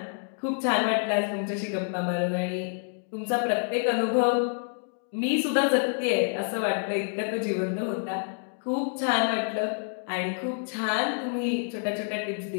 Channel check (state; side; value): silent; right; 59 dB below the other